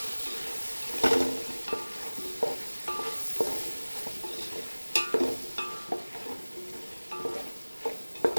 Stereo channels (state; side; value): inverted; both; correlation -1.00